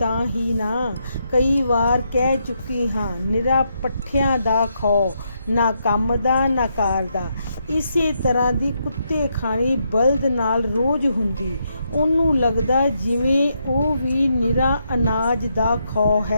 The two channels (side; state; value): both; inverted; correlation -0.79